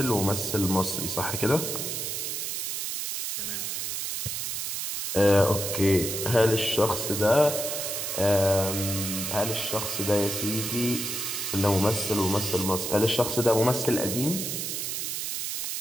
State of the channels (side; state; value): right; noise; hiss, 3 dB below the sound